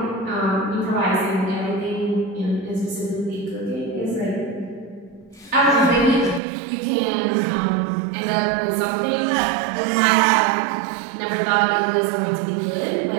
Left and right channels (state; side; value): drops out; left; at 6.4 s